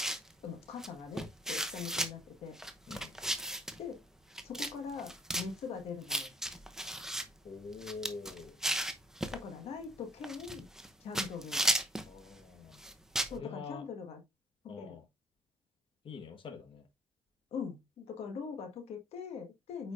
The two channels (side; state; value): both; normal; correlation 0.58